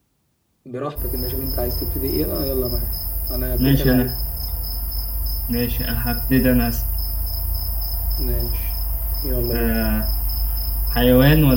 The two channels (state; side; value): identical; both; correlation 1.00